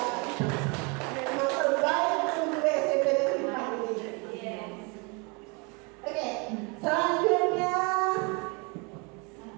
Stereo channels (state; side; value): quieter; left; 31.1 dB